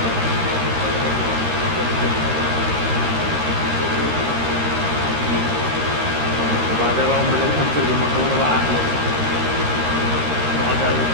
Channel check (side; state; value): left; late; 13 ms